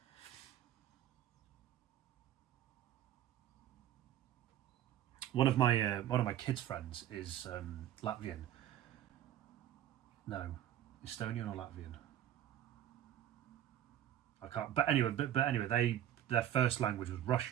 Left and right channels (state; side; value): quieter; left; 11.8 dB